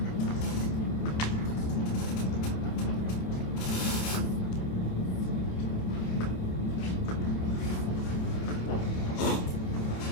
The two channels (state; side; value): late; right; 27 ms